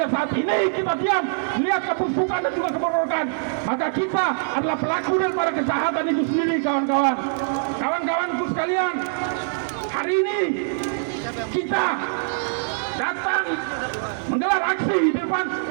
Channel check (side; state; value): left; silent; digital silence